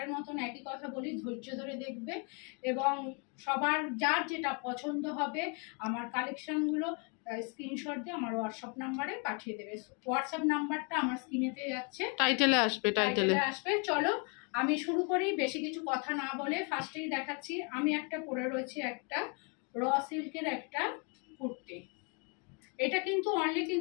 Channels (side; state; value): right; quieter; 35.5 dB